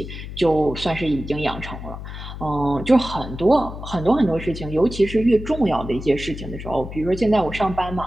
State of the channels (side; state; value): left; noise; hum, 10 dB below the sound